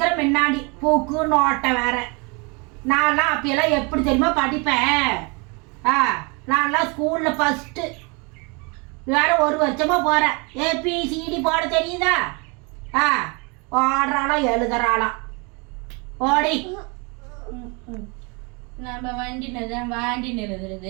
முன்னாடி பூக்கு நோட்டை வேற. நான்லாம் அப்பயெல்லாம் எப்படி தெரியுமா படிப்பேன்? நான்லாம் ஸ்கூலில் ஃபஸ்ட்டு. வேற ஒரு வருஷமா போகிறேன். ஏபிசிடி போட தெரியுதா? ஓடுறாளாம் எழுதுறாளாம். ஓடி நம்ம வாண்டி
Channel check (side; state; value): left; quieter; 30.7 dB